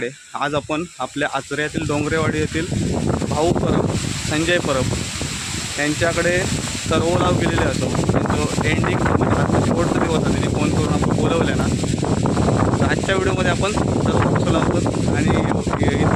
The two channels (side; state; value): both; identical; correlation 1.00